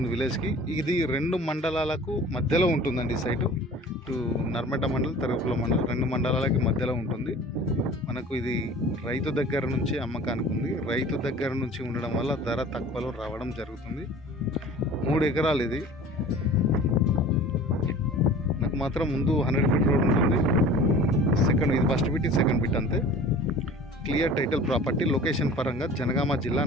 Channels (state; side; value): normal; both; correlation 0.43